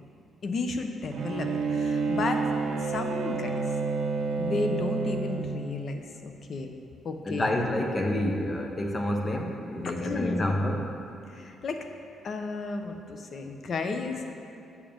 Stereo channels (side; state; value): both; normal; correlation 0.76